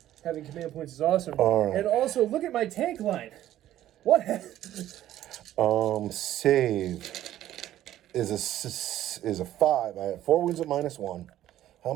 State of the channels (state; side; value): quieter; left; 12.9 dB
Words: Having command points is awesome. All right. And also, look at my tank line. What? Save is a 5. I have 4 wounds at -1. How